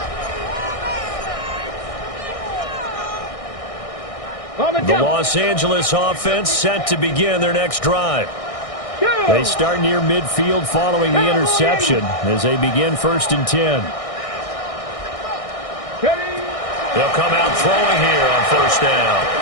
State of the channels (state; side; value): late; right; 1.6 ms